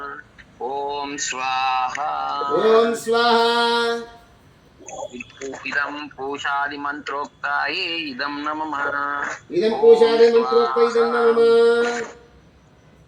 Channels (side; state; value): both; identical; correlation 1.00